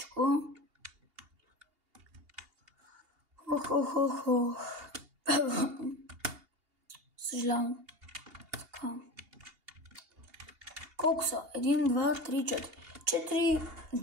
Съжалявам. Така. Колко са? 1, 2, 3, 4. 4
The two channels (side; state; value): left; late; 2.8 ms